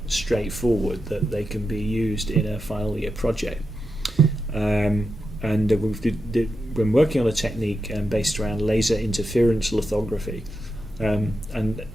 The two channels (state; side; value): normal; both; correlation 0.88